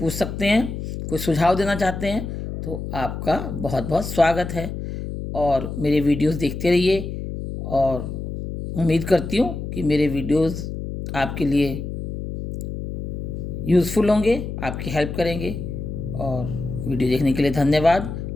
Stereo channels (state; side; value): noise; left; hum, 6 dB below the sound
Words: सकते हैं, कोई सुझाव देना चाहते हैं तो आपका बहुत बहुत स्वागत है। और मेरे वीडियोस देखते रहिए और उम्मीद करती हूँ कि मेरे वीडियोस आपके लिए यूज़फुल होंगे, आपकी हेल्प करेंगे। और वीडियो देखने के लिए धन्यवाद।